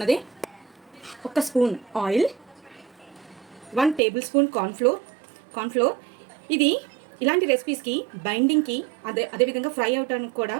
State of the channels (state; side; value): drops out; left; at 4.0 s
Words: 1 spoon oil, 1 table spoon cornflour. ఇది ఇలాంటి రెసిపీస్కి బైండింగ్కి అదేవిధంగా ఫ్రై అవడానికి కూడా